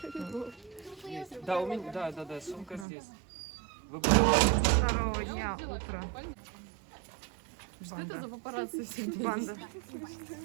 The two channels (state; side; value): drops out; left; at 2.9 s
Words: Да, у меня, да, сумка здесь. Второго дня утро. Что это за папарацци всегда? Банда.